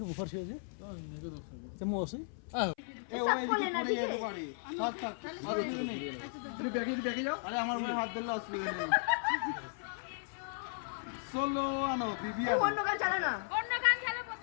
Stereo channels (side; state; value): right; silent; 54 dB below the other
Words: আমার হাত ধরলে অসুবিধা নেই সোলো আনো বিবি অন্য গান চালা না, অন্য গান চালা